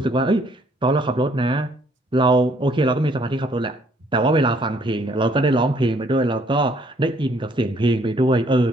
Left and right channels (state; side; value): normal; both; correlation 0.64